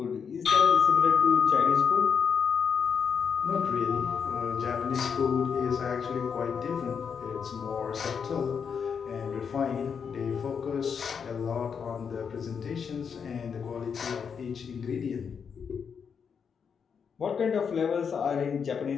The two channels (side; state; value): right; quieter; 6.6 dB